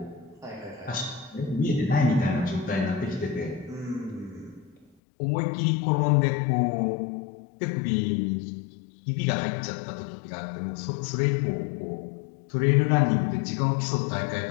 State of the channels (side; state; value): right; drops out; at 4.9 s